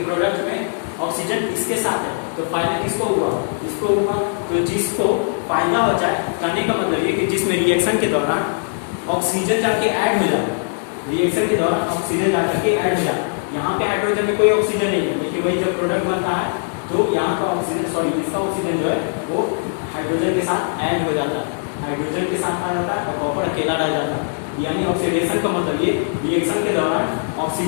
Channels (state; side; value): silent; right; digital silence